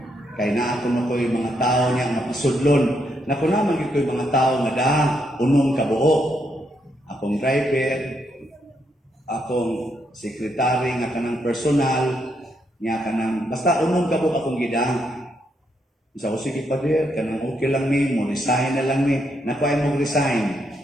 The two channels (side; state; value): both; normal; correlation 0.77